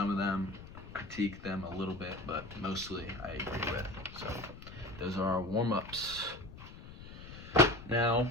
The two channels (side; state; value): left; noise; rumble, 14 dB below the sound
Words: of them, critique them a little bit, but mostly I agree with. So those are our warm-ups. Now,